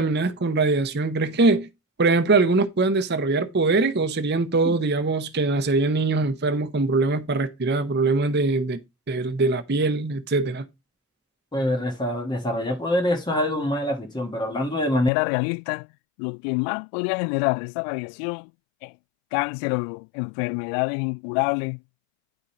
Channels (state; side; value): drops out; right; at 15.1 s